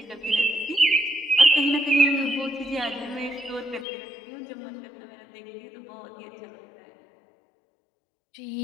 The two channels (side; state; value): right; drops out; at 3.9 s